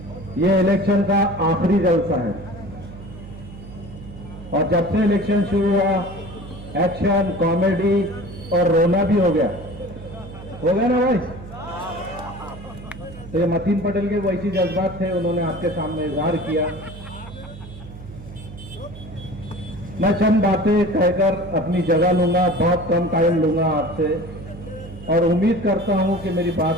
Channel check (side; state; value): right; noise; hum, 15 dB below the sound